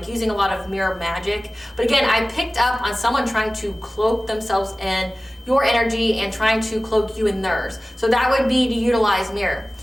using a lot of mirror magic. But again, I picked up on someone trying to cloak themselves in your energy and trying to cloak you in theirs. So that would be to utilize mirror.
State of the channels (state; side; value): normal; both; correlation 0.97